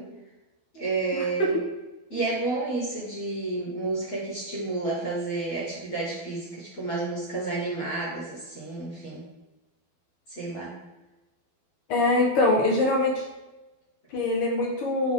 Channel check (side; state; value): right; late; 12 ms